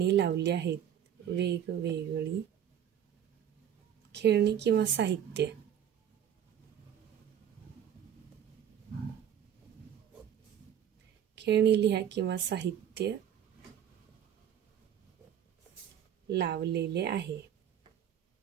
लावली आहेत. वेगवेगळी खेळणी किंवा साहित्य. खेळणी लिहा किंवा साहित्य लावलेले आहे.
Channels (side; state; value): left; quieter; 9.5 dB